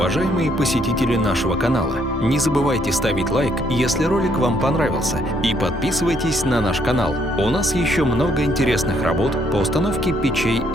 посетители нашего канала! Не забывайте ставить лайк, если ролик вам понравился, и подписывайтесь на наш канал. У нас еще много интересных работ по установке печей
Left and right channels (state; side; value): normal; both; correlation 0.70